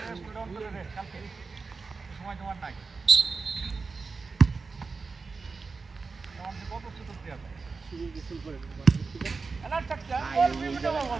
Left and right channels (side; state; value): left; quieter; 4.4 dB